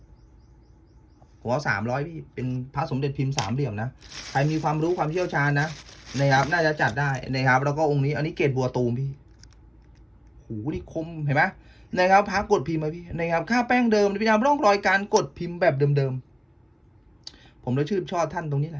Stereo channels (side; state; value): both; identical; correlation 1.00